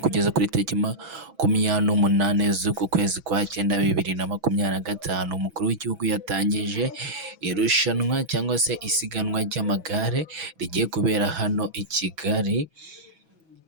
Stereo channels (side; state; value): left; late; 6.1 ms